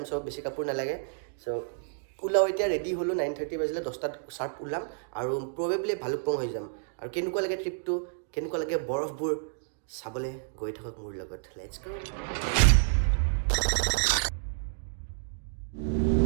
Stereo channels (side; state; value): left; silent; digital silence